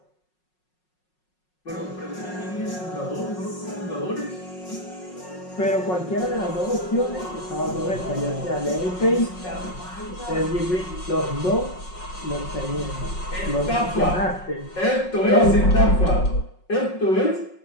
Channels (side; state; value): right; late; 5.5 ms